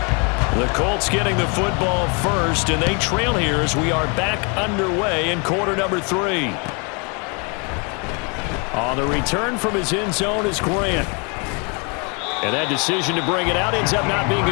The Colts getting the football first, and they trail here as we are back underway in quarter number 3. On the return from his end zone is Grant. And that decision to bring it out ends up not being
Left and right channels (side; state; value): right; quieter; 33.8 dB